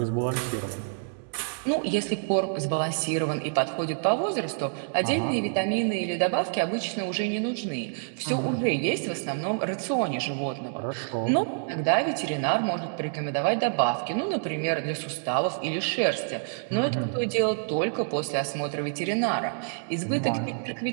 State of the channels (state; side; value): silent; left; digital silence